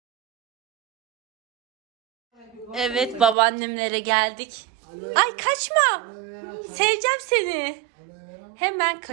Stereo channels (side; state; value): left; drops out; at 3.4 s